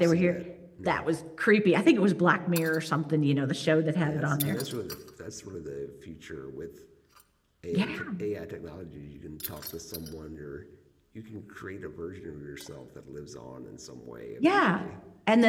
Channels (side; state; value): both; identical; correlation 1.00